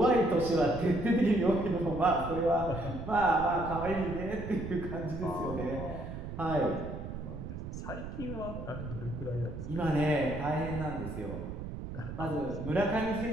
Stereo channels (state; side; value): noise; right; rumble, 8 dB below the sound